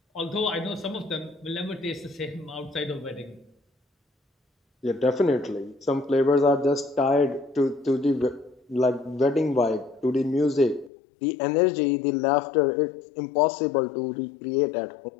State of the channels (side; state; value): right; drops out; at 10.9 s